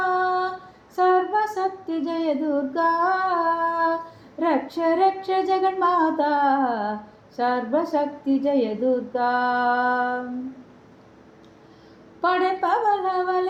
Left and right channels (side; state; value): both; identical; correlation 1.00